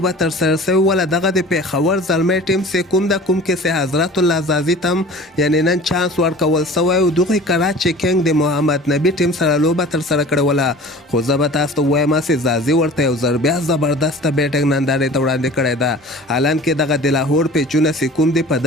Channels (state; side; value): normal; both; correlation 0.42